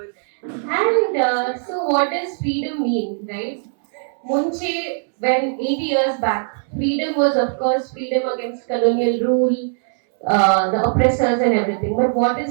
And so, what does freedom mean, right? Munche, when 80 years back, freedom was, of course, freedom against colonial rule, the oppressors and everything. But what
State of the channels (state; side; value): silent; left; 66 dB below the other